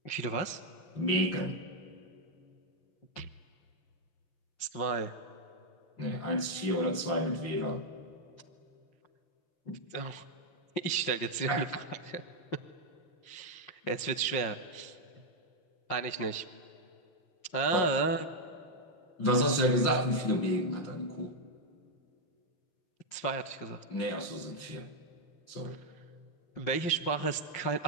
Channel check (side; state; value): right; late; 5.8 ms